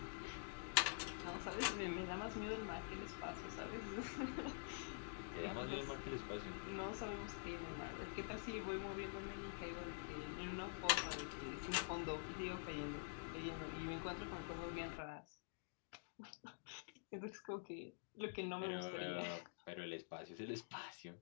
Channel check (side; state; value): right; silent; digital silence